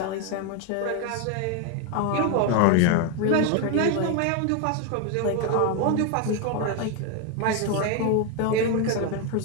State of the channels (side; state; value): both; different; correlation 0.01